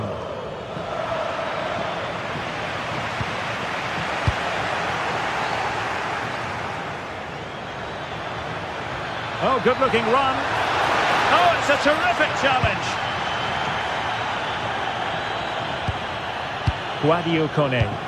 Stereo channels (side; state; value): both; identical; correlation 1.00